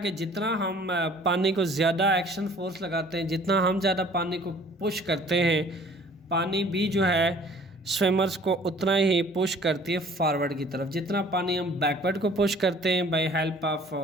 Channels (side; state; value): both; normal; correlation 0.53